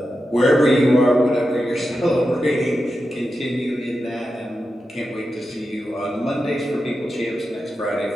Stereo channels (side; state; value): both; normal; correlation 0.90